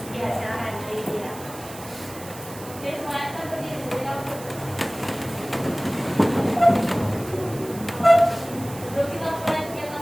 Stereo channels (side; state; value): right; noise; hiss, 16 dB below the sound